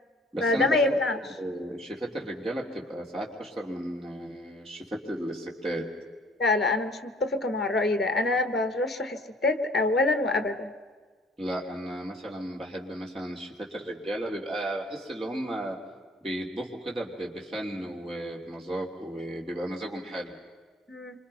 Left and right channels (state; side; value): normal; both; correlation 0.55